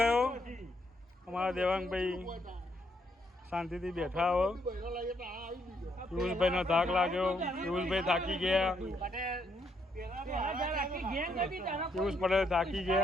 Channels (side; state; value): both; normal; correlation 0.74